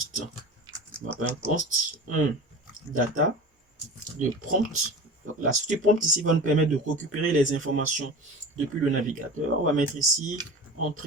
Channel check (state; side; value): normal; both; correlation 0.33